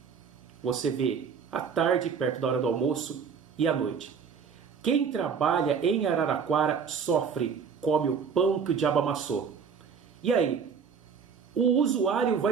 você vê à tarde, perto da hora do almoço, e à noite. Quem trabalha em Araraquara sofre, come o pão que o diabo amassou. E aí? O usuário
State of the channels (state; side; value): quieter; left; 6.3 dB